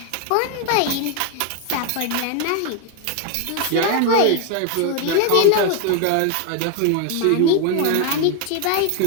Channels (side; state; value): both; different; correlation 0.01